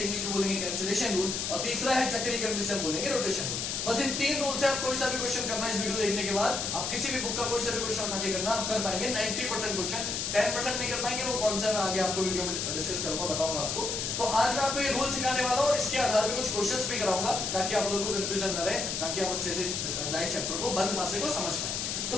इंग्लिश में बोलेंगे कैंसिलेशन रूल, और तीसरा है चक्रीकरण जिसे हम बोलेंगे रोटेशन रूल। बस इन 3 रूल से आप कोई सा भी क्वेश्चन करना इस वीडियो देखने के बाद, आप किसी भी बुक का कोई सा भी क्वेश्चन उठा के करना, आप कर पाएंगे 90% क्वेश्चन। 10% नहीं कर पाएंगे, वो कौन सा मैं आगे आपको वीडियो में डिस्कस करूंगा, बताऊंगा आपको। तो आज मैं आपको ये रूल सिखाने वाला हूँ और इसके आधार पर कुछ क्वेश्चंस भी कराऊंगा ताकि आप लोगों को कंफ्यूजन न रहे, ताकि आप अच्छे से लाइव चैप्टर को बंद पासे को समझ पाए। तो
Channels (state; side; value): noise; left; hiss, 2 dB below the sound